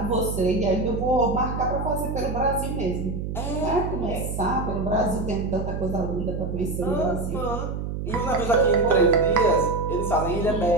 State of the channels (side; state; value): right; noise; hum, 4 dB below the sound